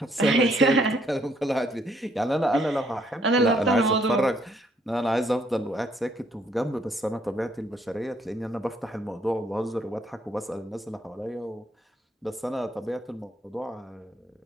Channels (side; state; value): both; normal; correlation 0.68